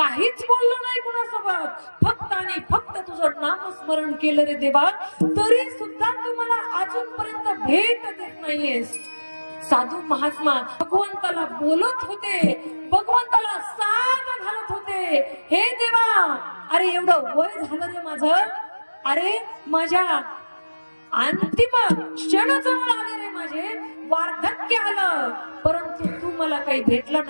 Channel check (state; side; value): inverted; both; correlation -1.00